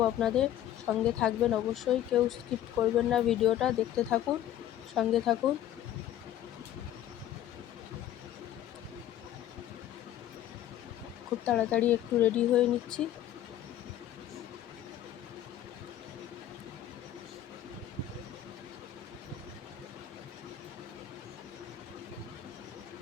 আপনাদের। সঙ্গে থাকবেন অবশ্যই, কেউ স্কিপ করবেন না, ভিডিওটা দেখতে থাকুন, সঙ্গে থাকুন। খুব তাড়াতাড়ি একটু রেডি হয়ে নিচ্ছি।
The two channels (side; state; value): right; quieter; 12.0 dB